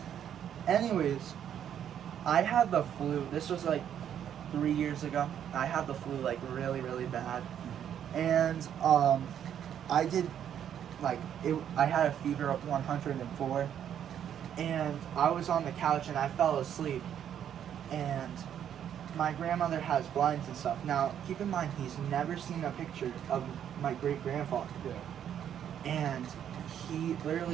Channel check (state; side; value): quieter; left; 9.5 dB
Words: Anyways, I had the flu. This was like 3 years ago. I had the flu like really, really bad. And I did I had a fever of 104. And I was on the couch and I fell asleep. And my grandmother has blinds and stuff. Now, keep in mind, he's never seen a picture of my great-grandfather. Yeah. And he